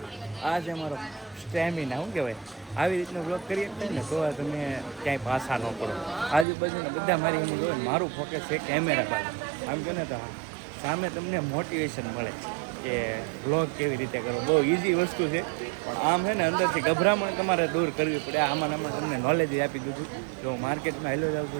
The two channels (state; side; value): drops out; left; at 6.5 s